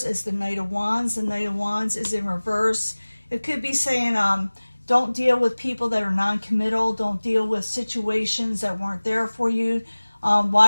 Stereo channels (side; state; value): both; inverted; correlation -1.00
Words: is the Knight of Wands. The Knight of Wands is in reverse. It could be saying, don't deal with people that are non-committal. Don't deal with situations that weren't there for you.